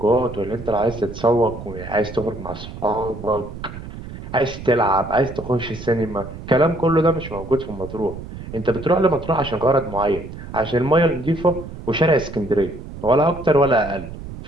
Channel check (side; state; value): right; noise; rumble, 11 dB below the sound